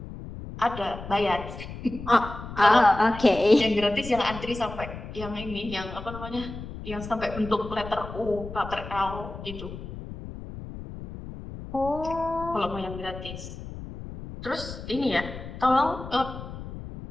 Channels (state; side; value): noise; left; rumble, 11 dB below the sound